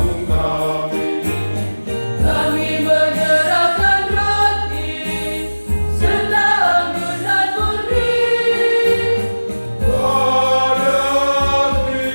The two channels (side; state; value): both; inverted; correlation -1.00